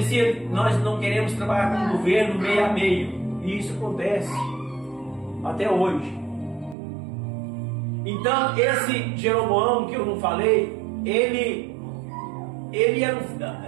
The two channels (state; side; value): drops out; left; at 6.8 s